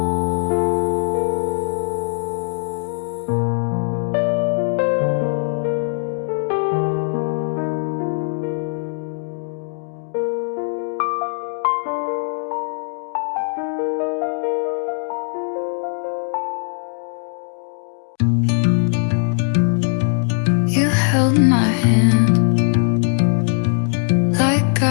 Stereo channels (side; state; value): right; silent; 63 dB below the other